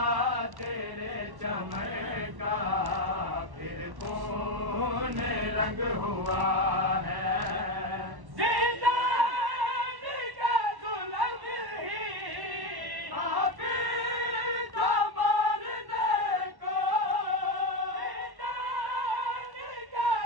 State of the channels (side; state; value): left; late; 1.1 ms